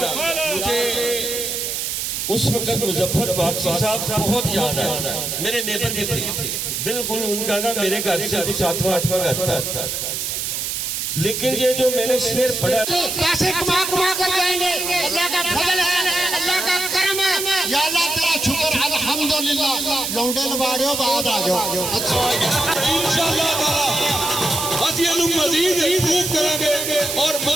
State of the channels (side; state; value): right; noise; hiss, 2 dB below the sound